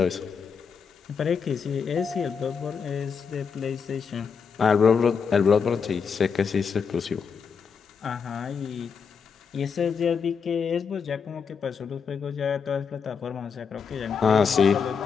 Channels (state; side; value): quieter; right; 6.1 dB